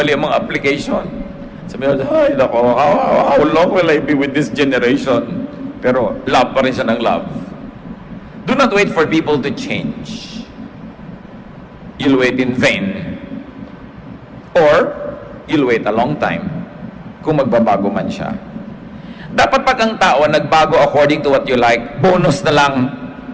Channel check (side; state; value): both; identical; correlation 1.00